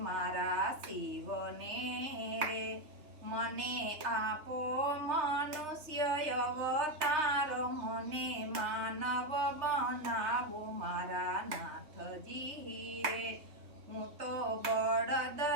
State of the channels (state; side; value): late; left; 3.2 ms